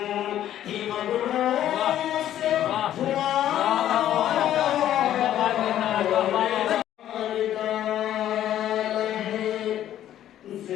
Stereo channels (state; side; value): quieter; right; 11.7 dB